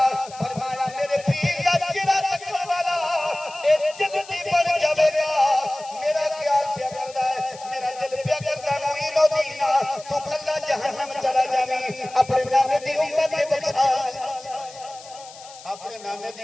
فرمایا میرے پیر دا چہرہ تکن والا اے جنتی بن جاوے گا میرا خیال پیا کردا ہے میرا دل پیا کردا معین الدین تو کلا جہنم چلا جاویں اپنے نام دی امت نے بچا اپنے نانے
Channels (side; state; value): left; noise; hiss, 19 dB below the sound